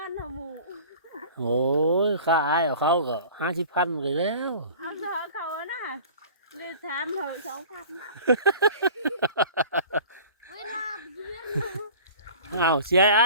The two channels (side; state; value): both; inverted; correlation -0.43